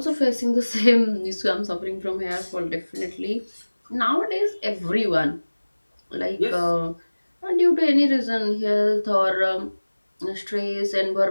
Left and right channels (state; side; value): inverted; both; correlation -1.00